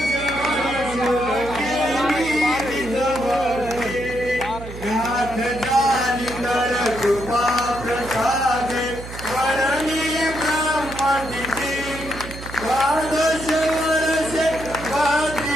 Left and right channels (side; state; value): right; noise; hum, 12 dB below the sound